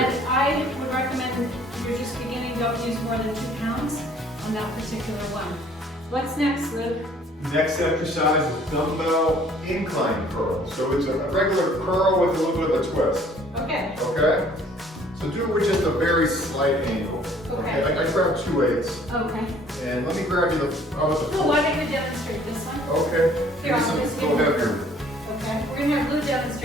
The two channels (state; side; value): normal; both; correlation 0.57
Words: good. I would recommend if you're just beginning, don't use more than 2 pounds on that particular one. What's next, Luke? Next exercise is dumbbell incline curl. So it's a regular curl with a little bit of a twist. Okay. Okay? So do it with just a very slight angle. Okay. I grab 2 weights. Okay. And let me grab you the, how about the Well, why don't you demonstrate this one? Okay. Here, I'll just Go give you- heavier. Okay, we're gonna have Lou